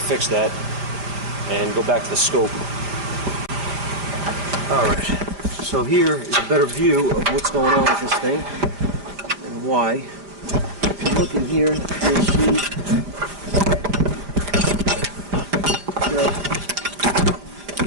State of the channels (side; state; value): left; late; 5.0 ms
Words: fix that and go back to the scope. All right. So here is a better view of what's going on with this thing and why. If you look in here, you'll see that